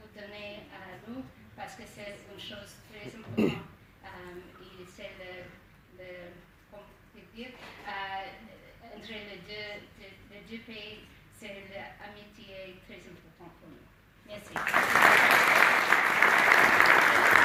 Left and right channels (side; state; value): both; identical; correlation 1.00